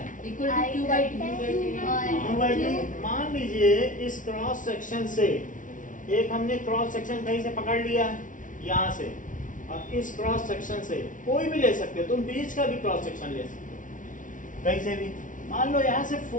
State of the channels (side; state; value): right; late; 0.38 ms